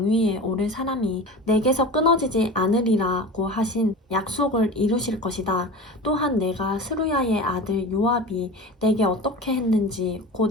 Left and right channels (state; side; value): normal; both; correlation 0.33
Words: 오를 사람이 내게서 끊어지지 않으리라고 하신 약속을 이루실 것이다. 또한 내가 스루야의 아들 요압이 내게 어떻게 했는지